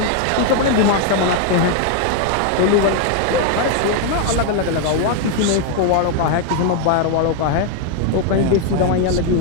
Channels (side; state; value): both; different; correlation 0.00